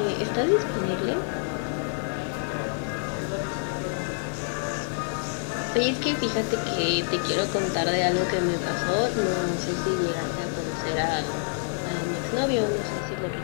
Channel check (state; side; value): silent; right; digital silence